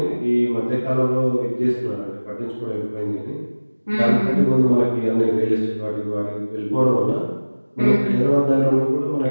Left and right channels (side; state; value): both; inverted; correlation -1.00